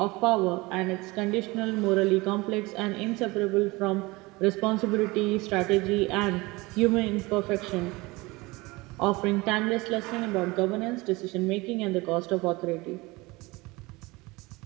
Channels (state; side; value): quieter; left; 22.9 dB